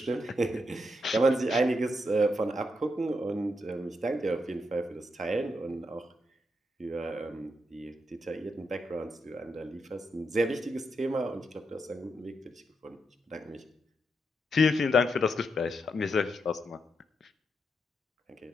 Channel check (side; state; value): both; normal; correlation 0.82